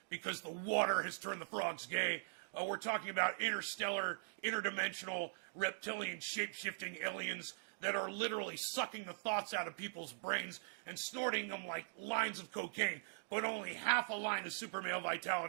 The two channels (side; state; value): left; silent; digital silence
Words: because the water has turned the frogs gay. We're talking about interstellar, interdimensional, reptilian, shape-shifting aliens that are literally sucking the thoughts out of people's brains and snorting them like lines of cocaine, but only half a line of super male